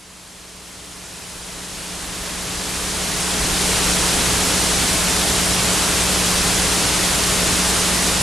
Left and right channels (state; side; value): normal; both; correlation 0.83